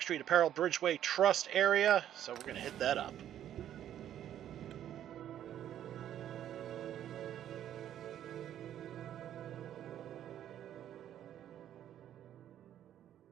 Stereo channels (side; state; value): left; quieter; 10.9 dB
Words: Apparel Bridgeway Trust area, so we're going to hit that up.